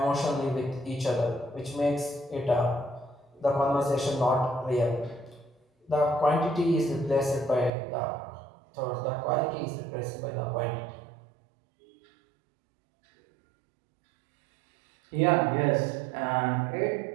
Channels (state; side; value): drops out; left; at 7.7 s